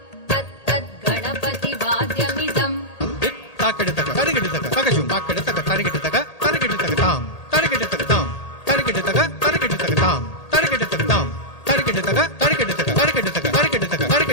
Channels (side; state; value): right; late; 1.8 ms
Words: तत्तत् गणपतिवाद्यमिदम् ताकड़तक तरिगिडतक तकजुम ताकड़तक तरिगिडतक तरिगिडतक ताम तरिगिडतक ताम तरिगिडतक तरिगिडतक ताम तरिगिडतक ताम तरिगिडतक तरिगिडतक तरिगिडतक तरिगिडतक